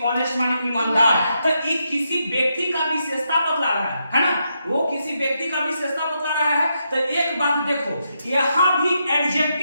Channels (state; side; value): inverted; both; correlation -0.82